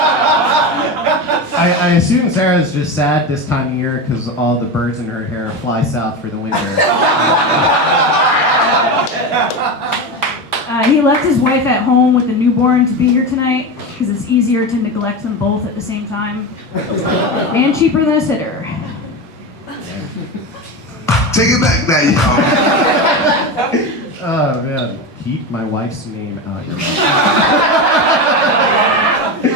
I assume Sarah's just sad this time of year because all the birds in her hair fly south for the winter. He left his wife at home with the newborn to be here tonight because it's easier to neglect them both at the same time. And cheaper than a sitter. Take it back now, y'all. Oh man, keep my wife's name out your mouth.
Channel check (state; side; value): normal; both; correlation 0.20